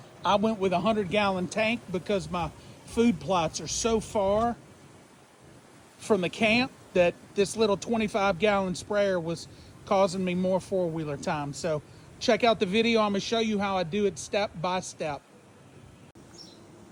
I went with a 100-gallon tank because my food plots are so far from the camp that this little 25-gallon sprayer was causing me more four-wheeler time. So check out the video. I'm gonna show you how I do it step by step.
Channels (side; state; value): both; identical; correlation 1.00